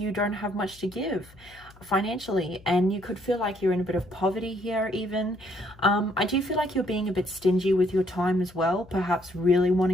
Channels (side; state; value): left; noise; hum, 25 dB below the sound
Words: don't have much to give financially, and you could feel like you're in a bit of poverty here even. I do feel like you're being a bit stingy with your time as well, perhaps really